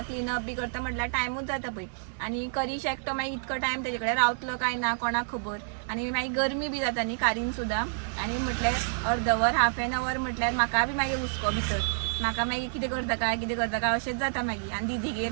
क्लिनअप बी करता म्हटल्यार टायमूच जाता पळय. आनी करीश एकटो मागीर इतको टायम तेजे कडेन रावतलो काय ना कोणाक खबर. आनी मागीर गरमी बी जाता न्ही कारीन सुद्दां. आनी म्हटल्यार अर्द वर हाफ एन अवर म्हटल्यार म्हाका बी मागीर हुस्को भितर. म्हाका मागीर कितें करता काय अशेंच जाता मागीर. आनी दिदीगेर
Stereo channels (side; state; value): left; silent; digital silence